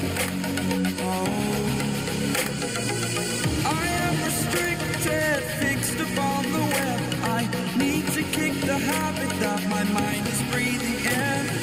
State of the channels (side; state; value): both; identical; correlation 1.00